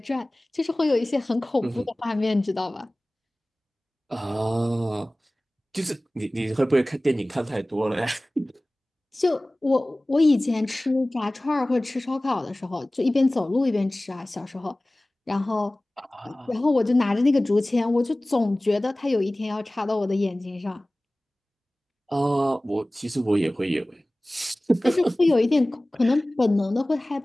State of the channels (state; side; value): normal; both; correlation 0.98